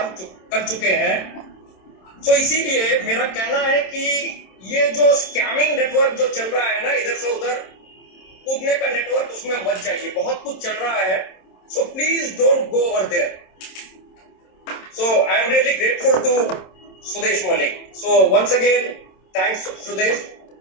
कर चुके हैं। तो इसीलिए मेरा कहना है कि ये जो स्कैमिंग नेटवर्क जो चल रहा है ना, इधर से उधर कूदने का नेटवर्क, उसमें मत जाइए। बहुत कुछ चल रहा है, so please don't go over there. So I am really grateful to Sudesh Malik. So once again thanks Sudesh.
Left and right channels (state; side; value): late; right; 27 ms